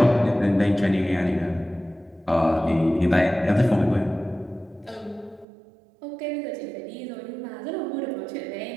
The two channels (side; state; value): left; drops out; at 5.5 s